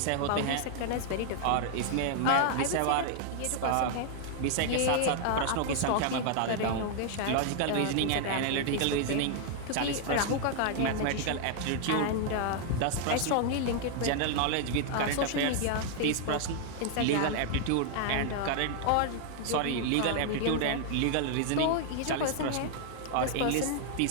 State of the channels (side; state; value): both; different; correlation 0.00